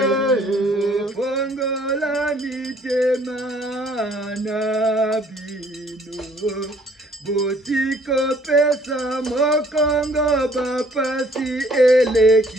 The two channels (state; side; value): normal; both; correlation 0.60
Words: Fongola mitema na bino, botiko pesa mokongo bapasi